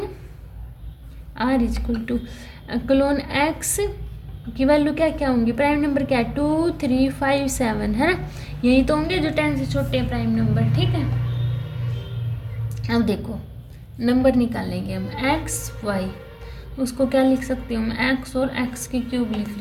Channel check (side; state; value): both; identical; correlation 1.00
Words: r is equal to colon x की वैल्यू क्या क्या होंगी? प्राइम नंबर क्या है? 2 3 5 7 है ना, यही तो होंगे जो 10 से छोटे हैं प्राइम नंबर। ठीक है, अब देखो नंबर निकालेंगे हम x y, उसको क्या लिख सकती हूँ मैं? x और x की क्यूब लिख